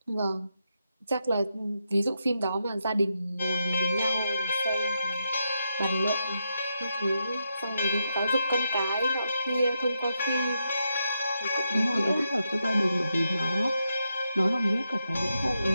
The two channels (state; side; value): inverted; both; correlation -0.84